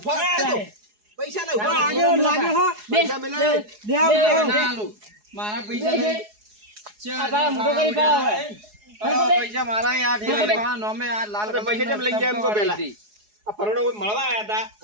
પૈસા લે ઉભા આગળ લાગે હો પૈસા મેલે દે ના આલું. મારા પૈસા નહીં. આ પાછા મોટો કરી પાડો હવે. પૈસા મારા યાર ઠેલા નોમે આ લાલ આપણે પૈસા કેમ લઈ ગયા એમ કહો પહેલા? આ ફરણો કોઈ મળવા આયા હતા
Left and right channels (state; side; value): late; left; 4.8 ms